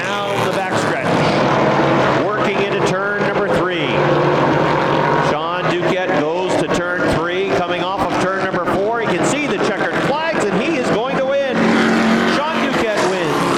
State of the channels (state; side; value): identical; both; correlation 1.00